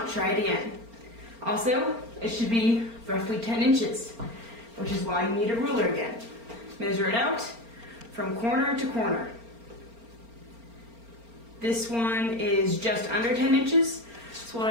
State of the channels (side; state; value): left; late; 4.4 ms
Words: try it again. Also, it should be roughly 10 inches, which is why you need a ruler again. Measure it out from corner to corner. This one is just under 10 inches. So what